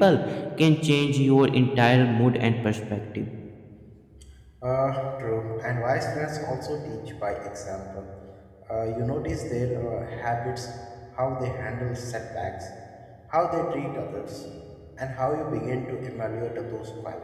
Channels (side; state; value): both; identical; correlation 1.00